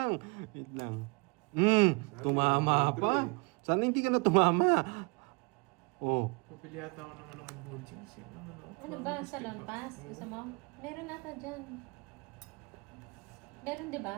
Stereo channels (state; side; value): quieter; left; 31.2 dB